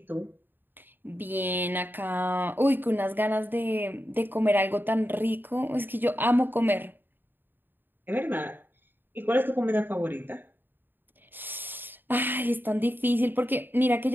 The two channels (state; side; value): late; left; 0.094 ms